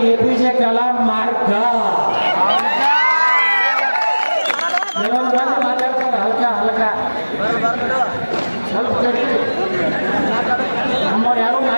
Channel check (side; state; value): both; inverted; correlation -1.00